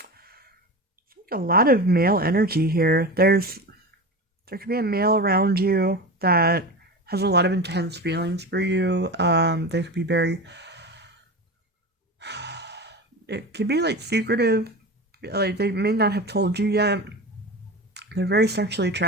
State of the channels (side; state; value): both; normal; correlation 0.27